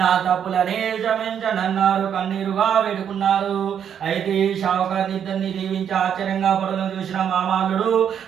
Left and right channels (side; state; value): left; quieter; 8.6 dB